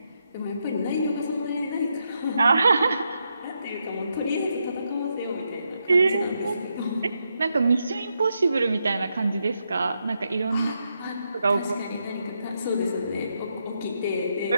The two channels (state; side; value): inverted; both; correlation -0.82